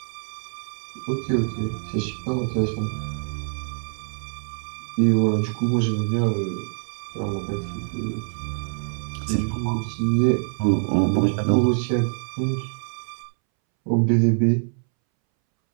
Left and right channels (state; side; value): silent; left; 62 dB below the other